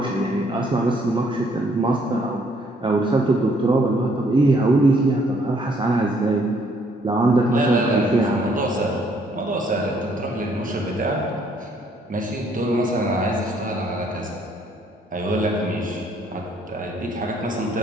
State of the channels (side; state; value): both; normal; correlation 0.66